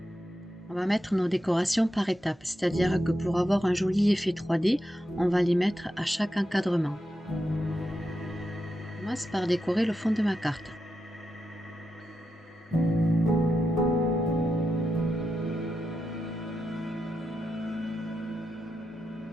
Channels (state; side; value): normal; both; correlation 0.87